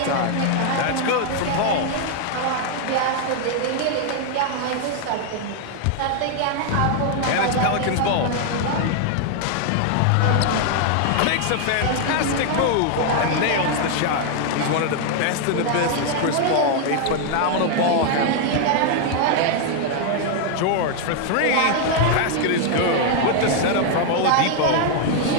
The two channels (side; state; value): both; different; correlation 0.00